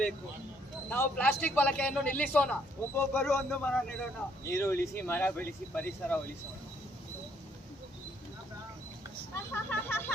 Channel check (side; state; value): both; normal; correlation 0.68